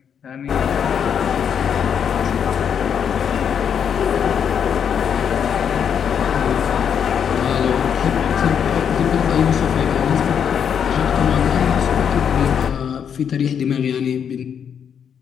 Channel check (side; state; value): right; quieter; 7.9 dB